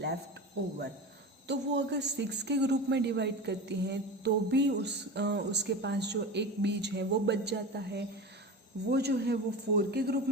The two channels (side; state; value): both; normal; correlation 0.29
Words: over. तो वो अगर 6 के ग्रुप में डिवाइड करती हैं तो भी उसके पास जो एक बीज है वो बच जाता है। वो जो है वो 4 के ग्रुप